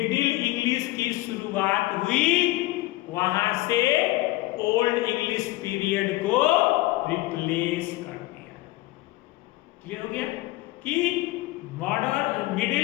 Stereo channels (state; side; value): quieter; right; 19.0 dB